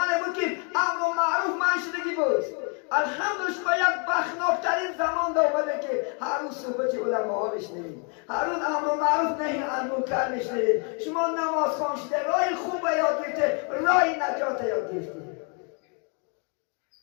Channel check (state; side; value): quieter; right; 37.2 dB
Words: بود که امر و معروف منشدگی بود. الحمدلله شما یک بخناکترین زمان داره که هر روز صحبت علما بشنوید، هر روز امر و معروف نهی عن منکر بشنوید. شما نماز خوان شده، راه خوب یاد گرفته، راه نجات یاد گرفته.